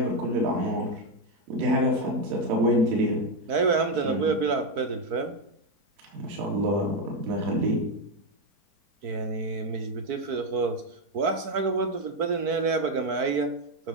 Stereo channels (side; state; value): left; late; 4.5 ms